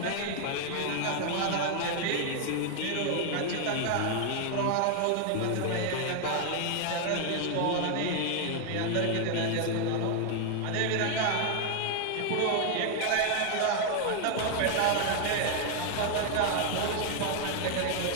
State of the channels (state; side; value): different; both; correlation 0.00